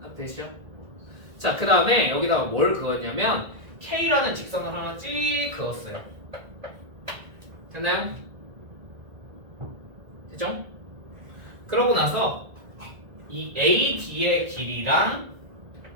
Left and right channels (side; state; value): left; late; 1.8 ms